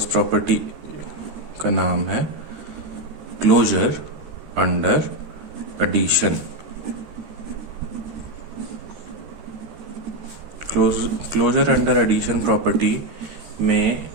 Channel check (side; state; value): left; late; 13 ms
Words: property का नाम है closure under addition. Closure under addition property में